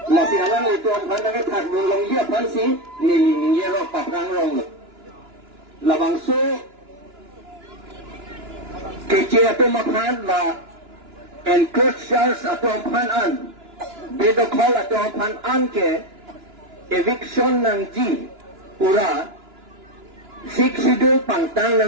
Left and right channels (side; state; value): left; late; 2.9 ms